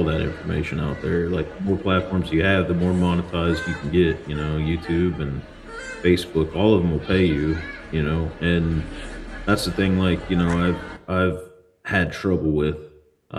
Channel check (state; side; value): identical; both; correlation 1.00